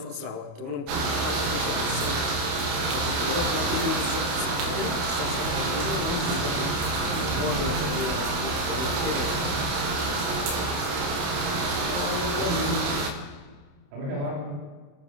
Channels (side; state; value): left; late; 28 ms